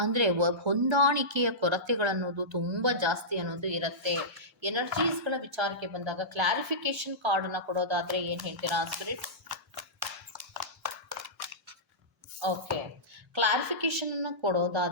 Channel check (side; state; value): both; normal; correlation -0.17